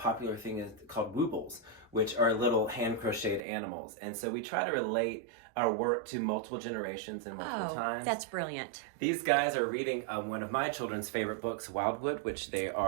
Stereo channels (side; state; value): left; drops out; at 3.4 s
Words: thing is called woobles, which are little hand-crocheted animals. And so we try to relate our work to multiple generations and multiple times. That's brilliant. These guys are reading one of my children's favorite books, Wildwood, which they